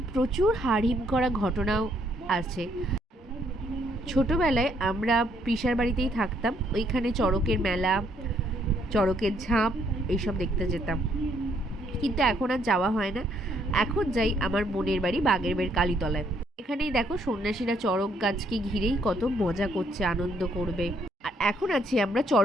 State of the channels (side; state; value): both; normal; correlation 0.70